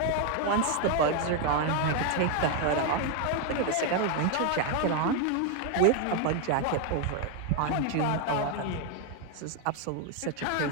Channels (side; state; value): both; different; correlation 0.01